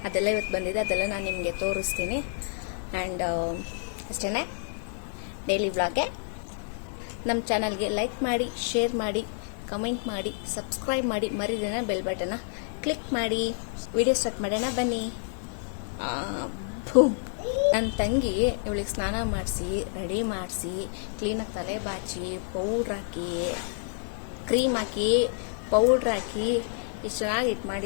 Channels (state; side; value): silent; right; digital silence